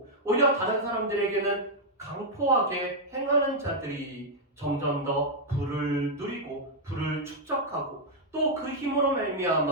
오히려 다른 사람들에게는 강포하게 행하는 자들이 점점 더 부를 누리고 부를 축적하고 또 그 힘으로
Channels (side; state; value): both; normal; correlation -0.03